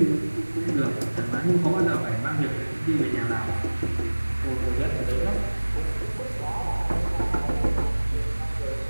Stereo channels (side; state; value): both; inverted; correlation -1.00